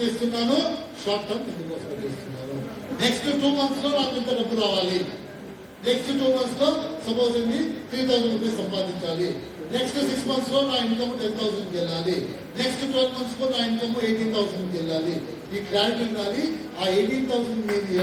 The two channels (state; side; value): identical; both; correlation 1.00